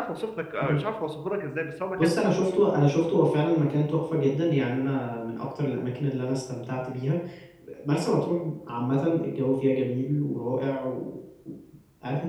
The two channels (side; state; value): both; identical; correlation 1.00